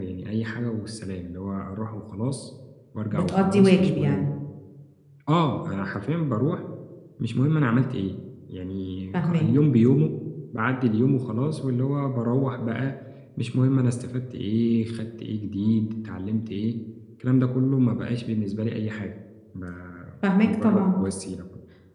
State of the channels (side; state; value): both; identical; correlation 1.00